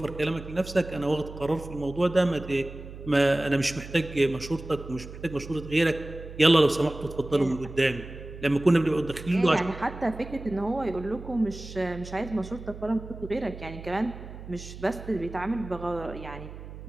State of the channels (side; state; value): right; noise; hum, 13 dB below the sound